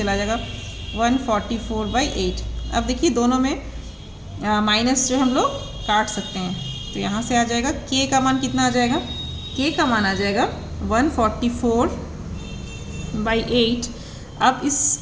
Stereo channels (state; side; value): identical; both; correlation 1.00